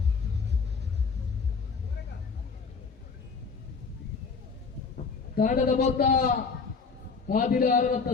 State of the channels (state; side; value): quieter; right; 5.1 dB